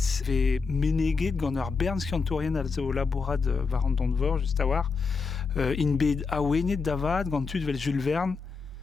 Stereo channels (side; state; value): right; quieter; 4.8 dB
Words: ve meneget gant ur bern skiantourien al zo labourad var an don vor, just a war, in bet awenet davad gant tud vel Jules Verne